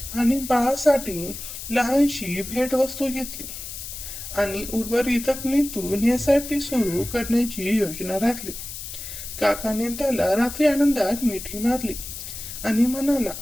आणि बाळासाठी लहानशी भेटवस्तू घेतली आणि उर्वरित रकमेतून SIP सुरू करण्याची योजना राखली. काकाने त्याला रात्री आनंदात मिठी मारली आणि म्हणाला,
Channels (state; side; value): noise; left; hiss, 9 dB below the sound